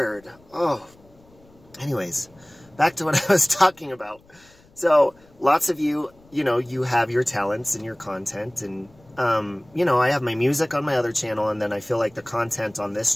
Oh. Anyways, back to what I was talking about. So, lots of you, you have your talents and your content, and, I have my music on my other channel, and then I feel like the content on this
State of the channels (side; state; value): left; noise; rumble, 29 dB below the sound